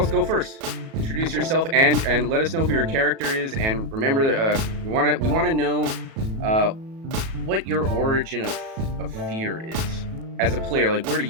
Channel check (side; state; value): left; late; 37 ms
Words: go first. Introduce yourself and let us know who your character is. And remember that we want to know what your origin of fear is as a player. Like, where do